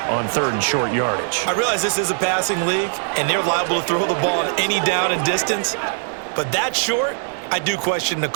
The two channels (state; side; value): silent; left; digital silence